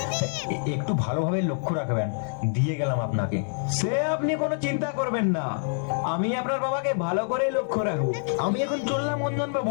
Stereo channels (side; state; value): right; silent; digital silence